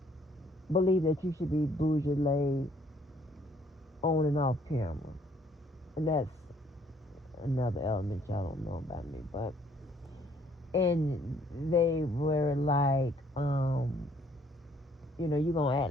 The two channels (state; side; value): normal; both; correlation 0.64